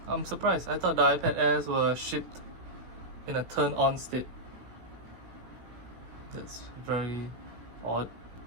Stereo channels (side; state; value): left; late; 17 ms